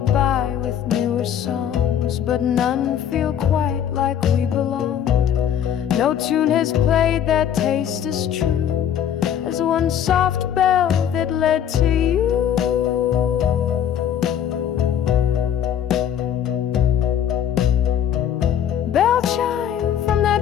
with newer songs, but none feel quite like we belonged. No tune has played that taste as true as one soft bell that led to you. Bell chime from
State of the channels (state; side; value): quieter; right; 9.5 dB